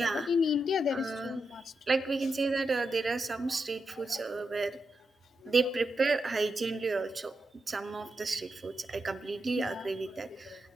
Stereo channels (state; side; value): normal; both; correlation 0.86